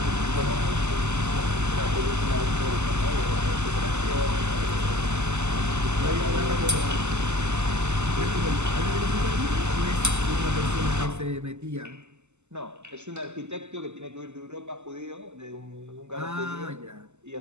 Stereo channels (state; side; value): late; left; 0.83 ms